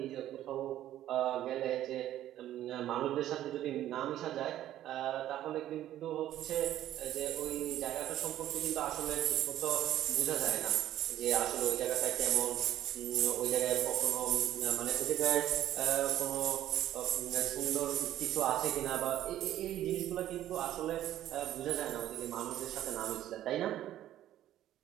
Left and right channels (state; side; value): quieter; left; 12.8 dB